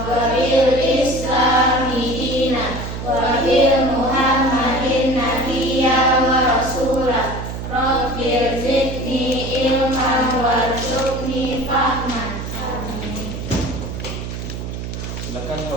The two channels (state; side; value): noise; right; hum, 7 dB below the sound